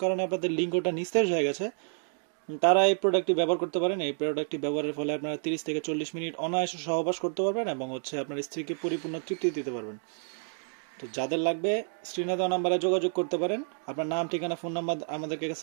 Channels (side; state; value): left; silent; 58 dB below the other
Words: কারণে আপনাদের লিঙ্গটা নিস্তেজ হয়ে গেছে, তারা এই প্রোডাক্টটি ব্যবহার করতে পারেন। এই প্রোডাক্টটি ব্যবহারের ফলে আপনারা 30 থেকে 40 মিনিট অনায়াসে সহবাস করতে পারবেন এবং হচ্ছে আপনার স্ত্রীকে পরিপূর্ণ তৃপ্তি দিতে পারবেন। তো যাদের লাগবে, স্ক্রিনে দেওয়া নাম্বারে যোগাযোগ করতে পারেন। আপনার নাম, ঠিকানা, ফোন নাম্বার আমাদেরকে